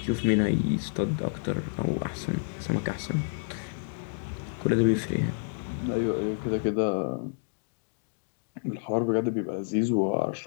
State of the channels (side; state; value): right; silent; digital silence